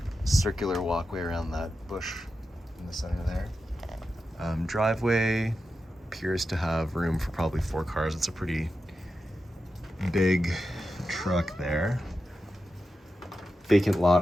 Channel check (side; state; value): both; normal; correlation 0.90